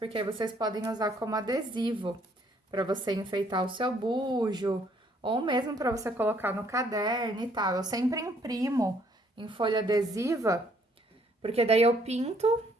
aí vocês podem usar como adesivo para você enfeitar o seu bujo, ou mesmo para você colocar no caderno e tal. Eu sempre imprimo em folha adesiva, porque daí eu pinto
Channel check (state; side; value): normal; both; correlation 0.65